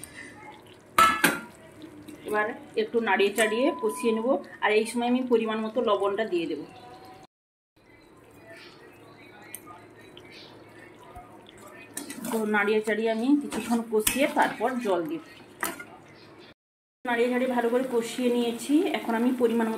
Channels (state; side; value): identical; both; correlation 1.00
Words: এবার একটু নাড়িয়ে চাড়িয়ে কষিয়ে নেব। আর এই সময় আমি পরিমাণ মতো লবণটা দিয়ে দেব। তো নাড়িয়ে চাড়িয়ে আমি কিছুক্ষণ কষিয়ে তারপর জল দিব। নাড়িয়ে চাড়িয়ে ভালো করে কষিয়ে নিয়েছি। এখন আমি পরিমাণ